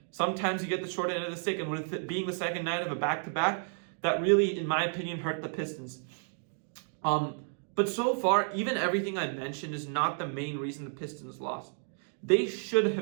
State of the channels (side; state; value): left; silent; 57 dB below the other